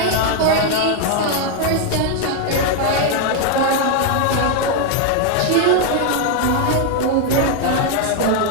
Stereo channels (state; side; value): different; both; correlation 0.01